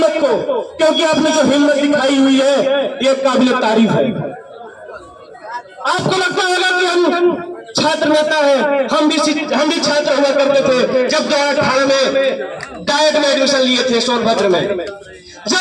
को, क्योंकि आपने जो हिम्मत दिखाई हुई है ये काबिल तारीफ है। आपको लगता होगा कि हम छात्र नेता है, हम भी छात्र हुआ करते थे जब 2018 में डायट में एडमिशन लिए थे सोनभद्र में। जब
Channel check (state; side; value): identical; both; correlation 1.00